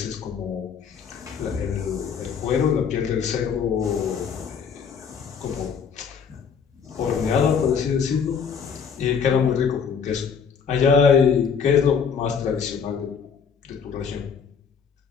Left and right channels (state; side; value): quieter; right; 6.6 dB